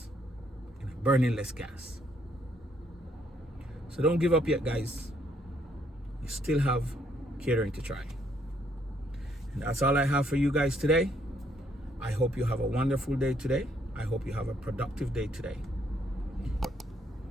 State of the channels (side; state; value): both; normal; correlation 0.70